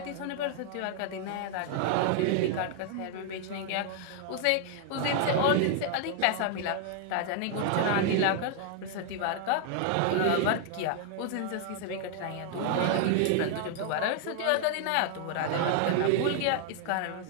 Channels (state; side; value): different; both; correlation 0.00